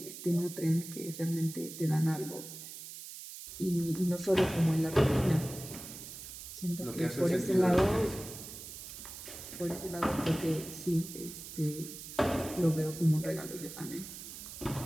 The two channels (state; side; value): noise; right; hiss, 11 dB below the sound